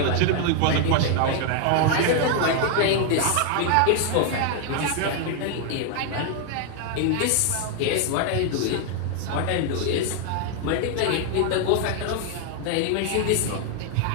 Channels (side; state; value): both; different; correlation 0.00